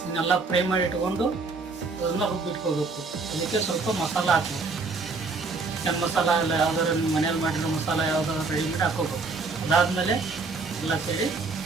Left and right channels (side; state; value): left; quieter; 4.1 dB